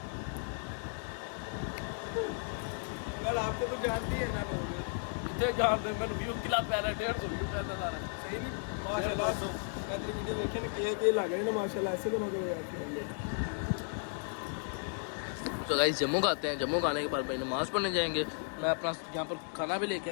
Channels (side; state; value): right; silent; 55 dB below the other